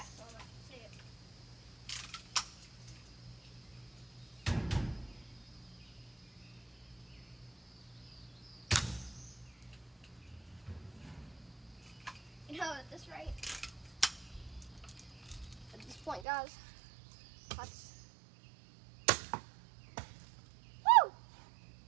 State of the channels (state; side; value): drops out; left; at 16.2 s